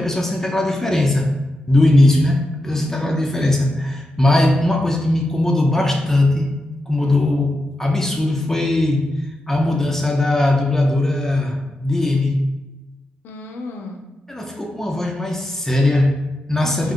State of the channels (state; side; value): normal; both; correlation 0.88